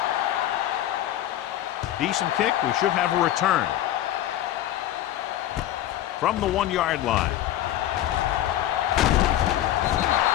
Decent kick. We should have a return. From the 1-yard line.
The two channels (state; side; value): quieter; right; 12.8 dB